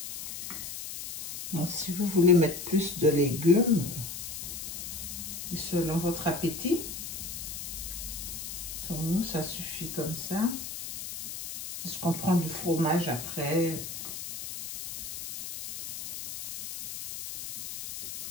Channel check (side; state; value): left; noise; hiss, 8 dB below the sound